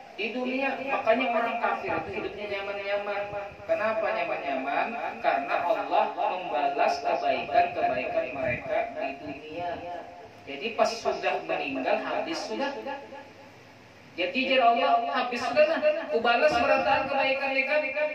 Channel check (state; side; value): identical; both; correlation 1.00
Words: di dunia. Makanya orang kafir itu hidupnya nyaman-nyaman. Kenapa nyaman-nyaman? Karena Allah membalas kebaikan-kebaikan mereka di dunia. Jadi pas sudah meninggal habis sudah. Jadi Allah habis sudah, aku balas berataan kebaikan mereka.